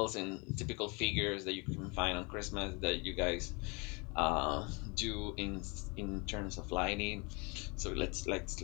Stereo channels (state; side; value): quieter; right; 30.1 dB